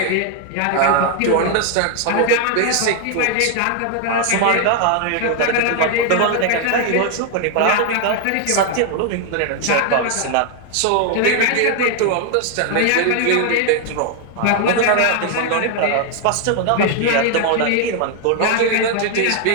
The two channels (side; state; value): both; different; correlation 0.00